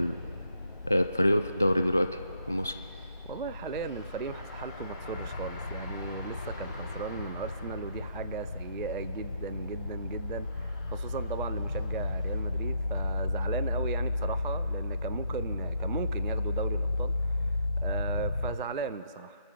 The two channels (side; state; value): both; inverted; correlation -0.72